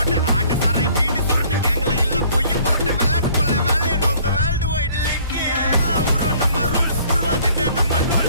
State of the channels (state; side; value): inverted; both; correlation -0.57